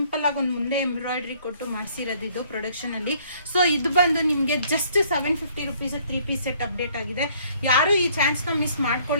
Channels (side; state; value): both; inverted; correlation -0.61